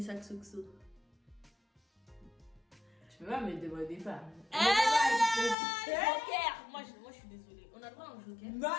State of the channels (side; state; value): right; drops out; at 5.6 s